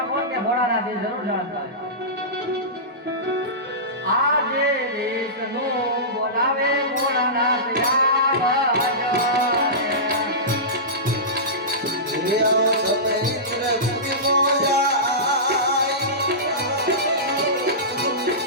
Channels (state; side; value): normal; both; correlation -0.19